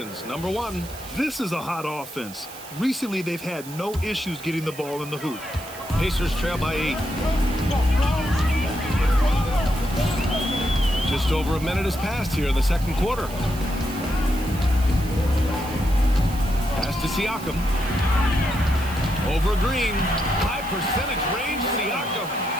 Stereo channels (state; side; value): noise; right; hiss, 16 dB below the sound